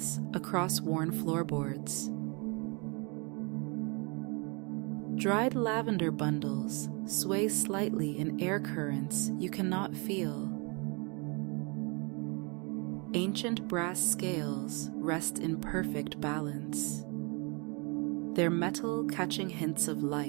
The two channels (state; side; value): quieter; left; 32.0 dB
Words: across worn floorboards. Dried lavender bundles sway slightly in air currents you cannot feel. Ancient brass scales rest in perfect balance, their metal catching hints of